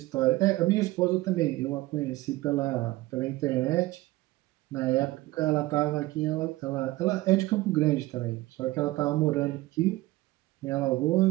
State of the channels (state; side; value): quieter; left; 18.6 dB